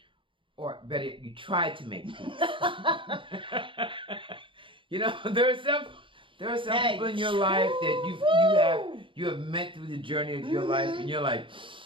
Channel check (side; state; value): left; late; 0.25 ms